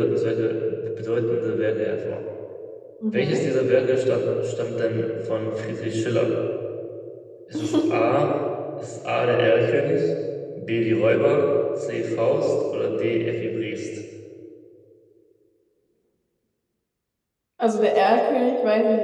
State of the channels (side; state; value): both; identical; correlation 1.00